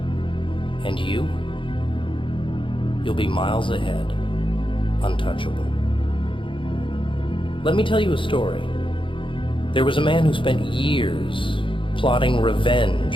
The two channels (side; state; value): right; late; 0.25 ms